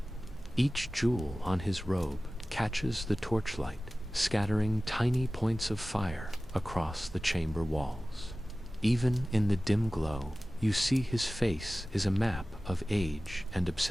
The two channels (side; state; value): both; normal; correlation 0.97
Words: Each jewel on his robe catches the torchlight, scattering tiny points of fire across the chamber walls. Even in the dim glow, you see his face is a map of age and